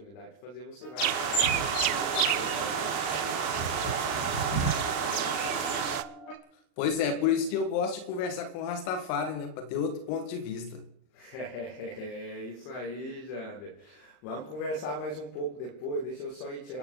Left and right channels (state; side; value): late; right; 39 ms